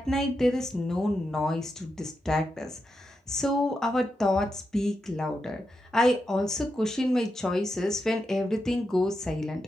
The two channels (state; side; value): normal; both; correlation 0.86